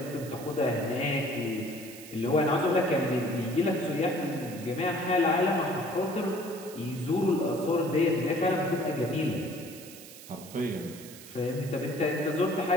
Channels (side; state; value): right; noise; hiss, 16 dB below the sound